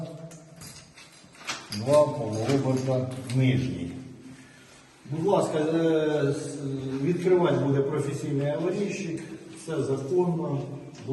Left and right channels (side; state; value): both; identical; correlation 1.00